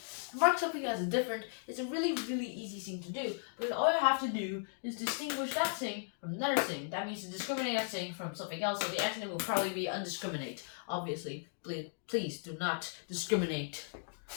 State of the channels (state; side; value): silent; right; digital silence